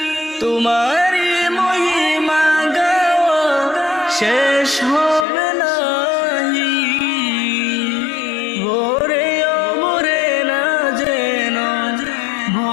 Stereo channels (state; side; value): drops out; right; at 5.2 s